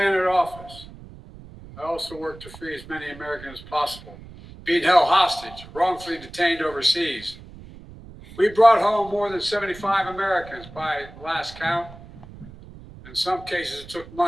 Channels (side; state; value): right; noise; rumble, 18 dB below the sound